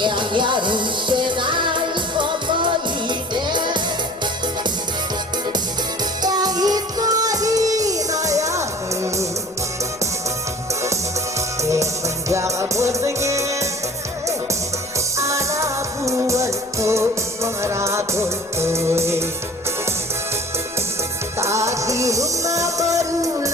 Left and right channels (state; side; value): noise; left; rumble, 27 dB below the sound